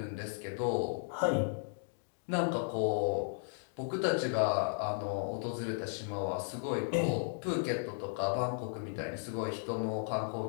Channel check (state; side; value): silent; right; digital silence